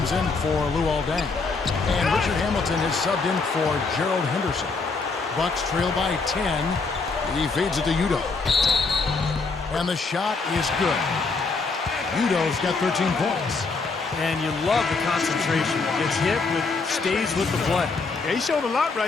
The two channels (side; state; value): right; quieter; 4.2 dB